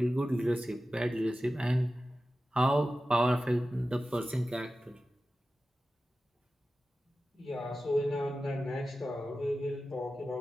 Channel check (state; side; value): normal; both; correlation 0.94